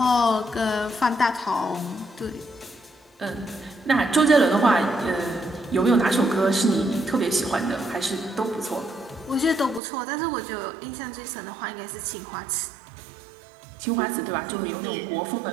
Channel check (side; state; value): left; drops out; at 9.8 s